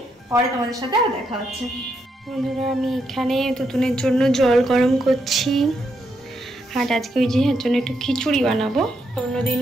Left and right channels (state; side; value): normal; both; correlation 0.79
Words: পরে তোমাদের সাথে আর দেখা হচ্ছে। বন্ধুরা, আমি এখানে তুতুনের জন্য জল গরম করছি। আর আজকে ওই যে এর জন্য একটু খিচুড়ি বানাবো। অন্যদিন